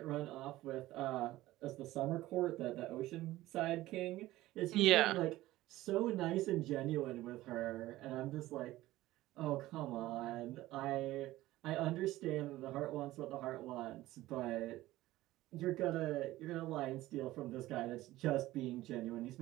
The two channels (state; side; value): quieter; left; 16.6 dB